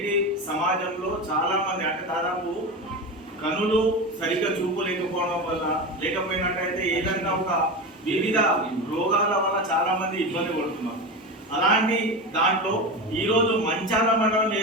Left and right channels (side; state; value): both; normal; correlation 0.23